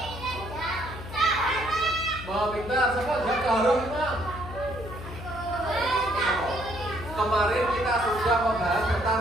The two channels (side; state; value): left; noise; hum, 11 dB below the sound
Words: Mau pintar, siapa jaga harum imam? Kemarin kita sudah membahas